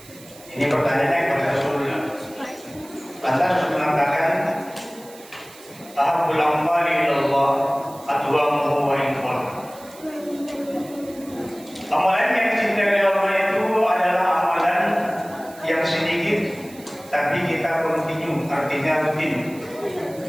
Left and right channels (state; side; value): noise; right; hiss, 21 dB below the sound